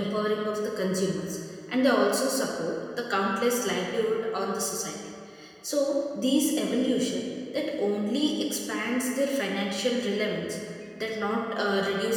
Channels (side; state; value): both; identical; correlation 1.00